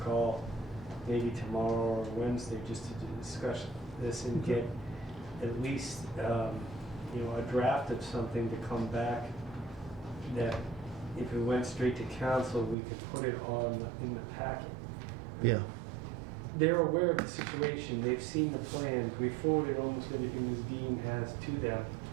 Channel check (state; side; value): drops out; left; at 12.8 s